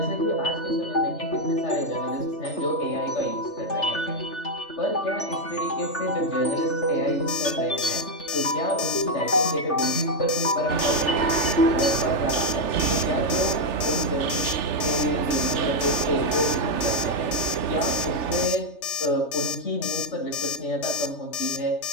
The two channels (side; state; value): right; late; 3.4 ms